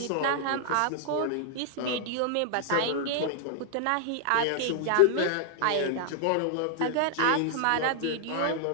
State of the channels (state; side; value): different; both; correlation -0.01